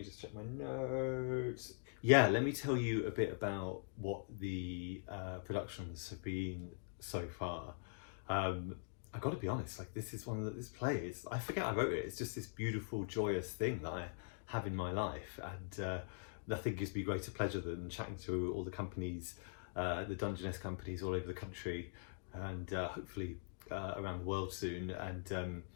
just check my notes. Yeah, let me tell you a bit about what the productions have been so far. I got to be honest, like, this is one of this play is, I forget I wrote it. It's just this beautiful, joyous thing that I have in my life, and nothing gives me greater pleasure than chatting to all the companies, the Dungeness companies all over the country, and hopefully around the world soon, and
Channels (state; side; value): silent; right; digital silence